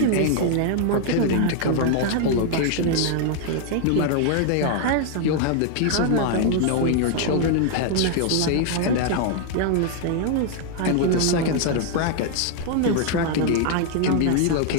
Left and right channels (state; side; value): different; both; correlation 0.00